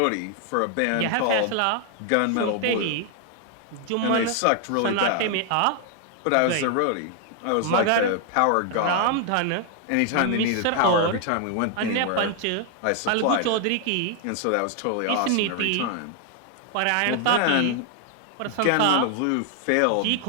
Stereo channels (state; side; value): different; both; correlation 0.00